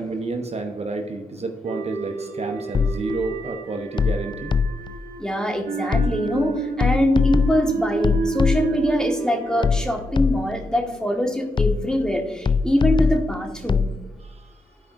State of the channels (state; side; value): normal; both; correlation 0.84